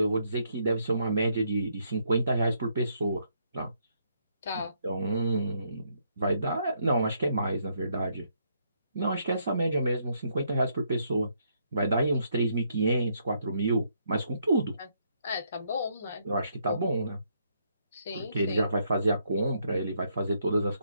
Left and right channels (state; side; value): inverted; both; correlation -0.73